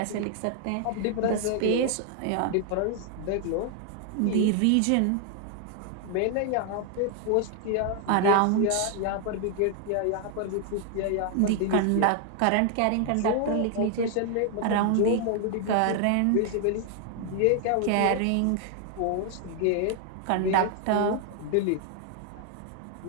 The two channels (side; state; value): both; different; correlation 0.00